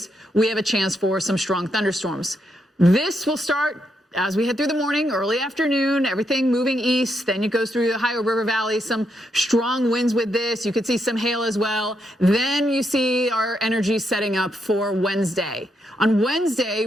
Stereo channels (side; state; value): both; normal; correlation 0.80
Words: we have a chance for some strong thunderstorms. This will start as we head through the morning, early afternoon, everything moving east. Then it goes through the Ohio River Valley, some strong winds with this. You could see some hail as well. Then you see our energy setting up for Wednesday. On Wednesday,